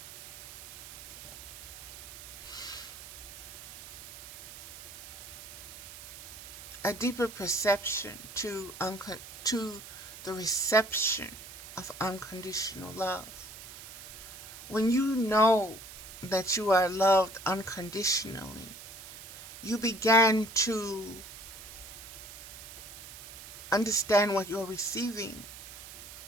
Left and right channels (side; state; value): right; noise; hiss, 14 dB below the sound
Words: perception to the reception of unconditional love. When you know that you are loved unconditionally, you begin to understand what you're receiving,